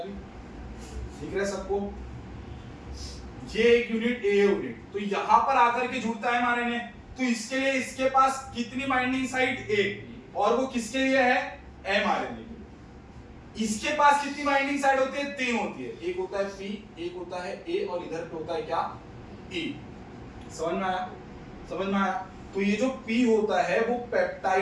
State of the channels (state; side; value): identical; both; correlation 1.00